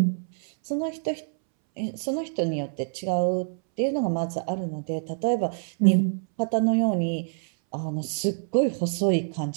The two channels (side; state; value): left; silent; 61 dB below the other